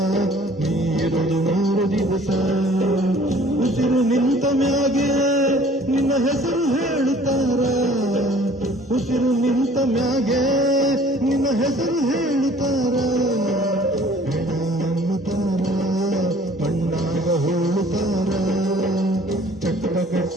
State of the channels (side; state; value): both; normal; correlation 0.53